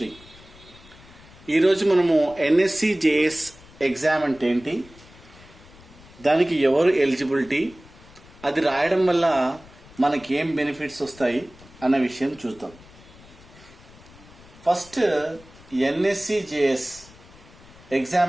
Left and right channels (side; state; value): left; noise; rumble, 23 dB below the sound